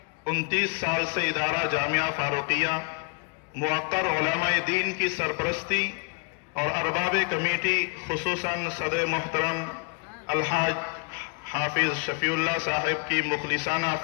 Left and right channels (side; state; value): right; quieter; 36.9 dB